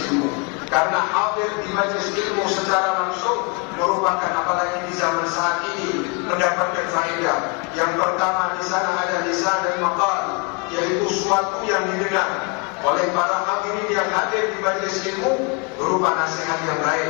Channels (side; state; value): right; quieter; 33.5 dB